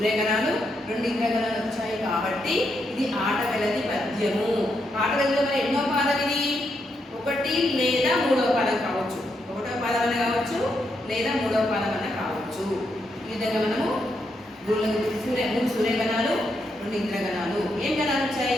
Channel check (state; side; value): normal; both; correlation 0.80